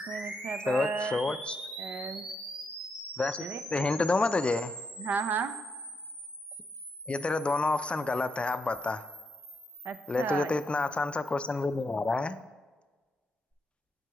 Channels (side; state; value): both; normal; correlation 0.80